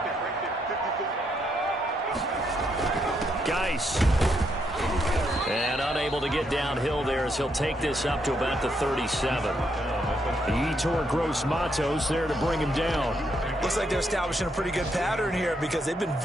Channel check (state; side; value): normal; both; correlation 0.77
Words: Geis. And unable to get downhill there as he'll take this up to about the 37. Yetur Gross-Matos there to bring him down. Looks like they're establishing a pretty good pattern here because they've been